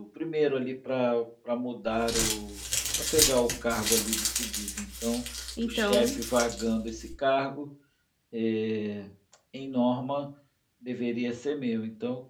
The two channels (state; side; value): identical; both; correlation 1.00